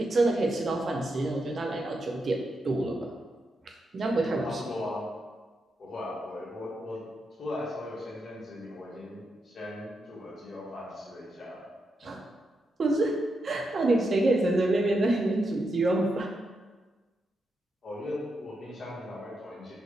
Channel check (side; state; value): both; normal; correlation 0.85